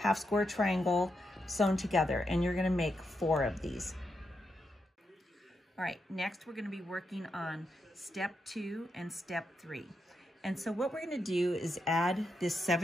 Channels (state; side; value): normal; both; correlation 0.84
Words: square triangle sewn together. And you're going to make 4 of these. All right, next we're going to be working on step 2 and step 3. And so what we're going to do is add this